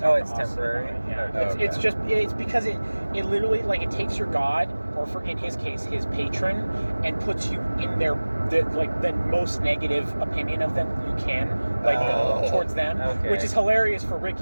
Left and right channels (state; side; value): inverted; both; correlation -1.00